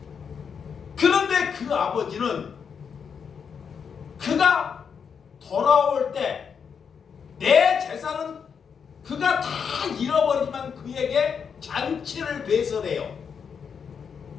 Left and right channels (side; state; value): right; quieter; 6.7 dB